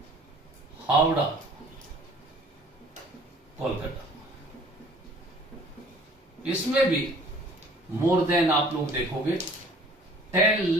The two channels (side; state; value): both; normal; correlation 0.52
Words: Howrah, Kolkata. इसमें भी मोर देन आप लोग देखोगे 10